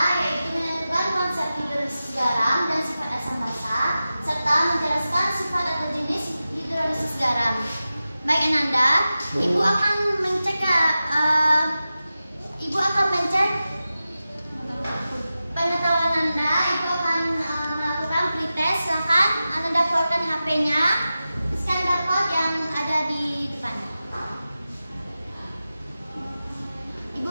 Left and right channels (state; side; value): inverted; both; correlation -0.94